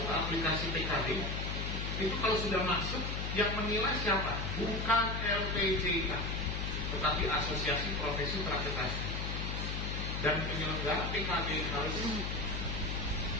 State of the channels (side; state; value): left; noise; hum, 3 dB below the sound